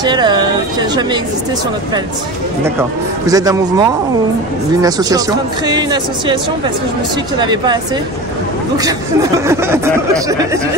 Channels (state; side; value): normal; both; correlation 0.30